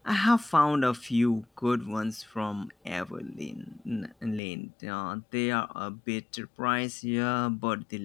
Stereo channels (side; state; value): right; drops out; at 4.4 s